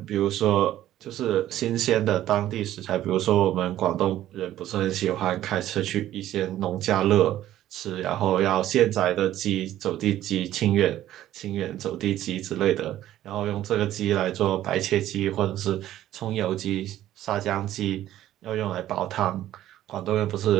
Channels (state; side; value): quieter; left; 13.1 dB